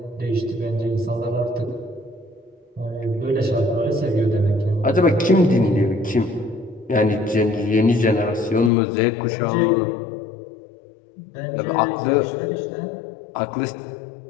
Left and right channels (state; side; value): drops out; right; at 8.7 s